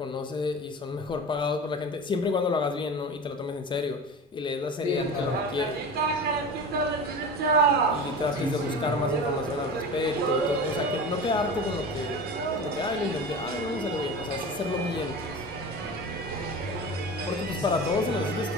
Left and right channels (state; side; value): normal; both; correlation 0.32